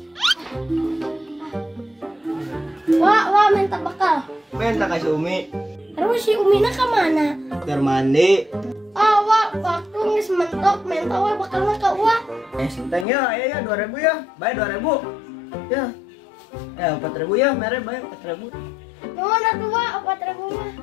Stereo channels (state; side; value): drops out; right; at 13.1 s